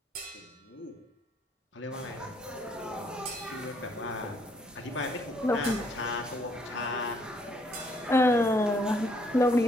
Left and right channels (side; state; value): both; normal; correlation 0.68